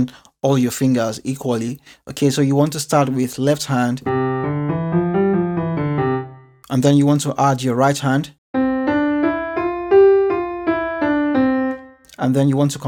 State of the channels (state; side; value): identical; both; correlation 1.00